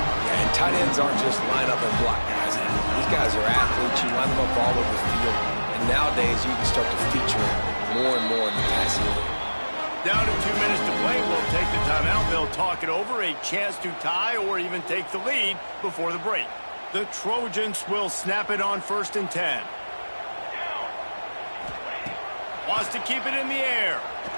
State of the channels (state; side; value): inverted; both; correlation -1.00